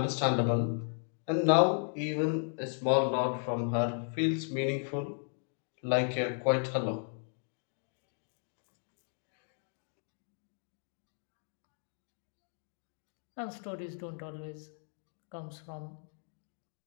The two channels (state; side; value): silent; right; 54 dB below the other